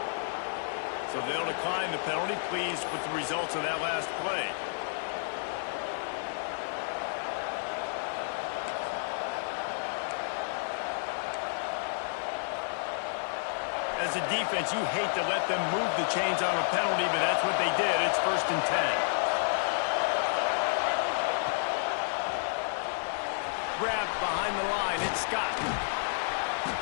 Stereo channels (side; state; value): right; silent; 57 dB below the other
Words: So they'll decline the penalty. Pleased with the results of that last play. As a defense, you hate to let them move the chains on a penalty, but that's what they did. It's 1st and 10. Grabbed behind the line. It's Scott.